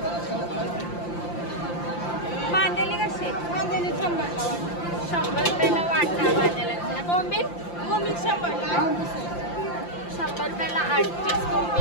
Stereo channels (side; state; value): right; late; 5.8 ms